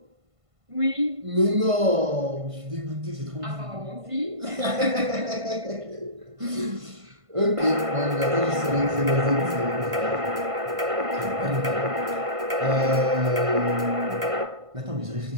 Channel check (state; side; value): late; left; 1.5 ms